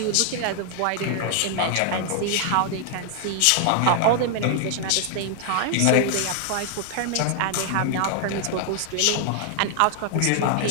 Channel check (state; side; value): different; both; correlation 0.00